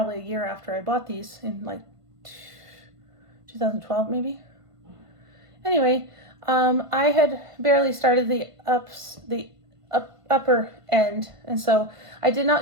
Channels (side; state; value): left; late; 1.5 ms